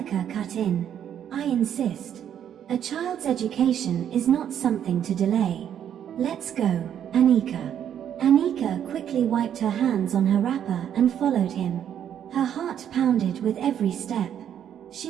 cut in. I insist. A child's education is not something to delay. Let's go, Anika. Anika quickly wiped her hands on her wrapper and followed him. Her heart pounded with every step.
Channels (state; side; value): quieter; left; 9.5 dB